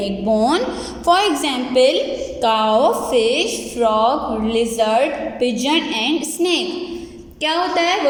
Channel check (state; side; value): identical; both; correlation 1.00